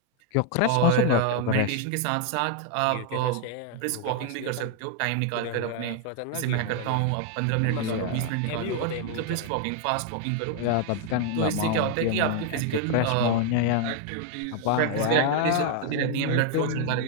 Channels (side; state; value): both; different; correlation 0.00